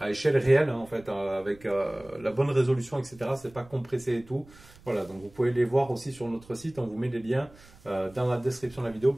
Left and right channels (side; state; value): right; noise; rumble, 24 dB below the sound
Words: échelle réelle, hein, en fait, avec la bonne résolution, etc. C'est pas compressé et tout. Voilà, donc vous pouvez les voir aussi sur notre site. On vous met les liens dans la description de la vidéo